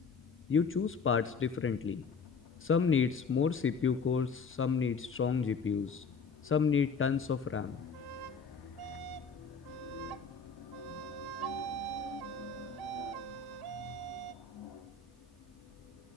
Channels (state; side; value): quieter; right; 5.2 dB